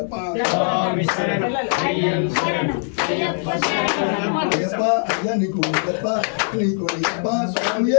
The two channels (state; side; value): silent; right; 58 dB below the other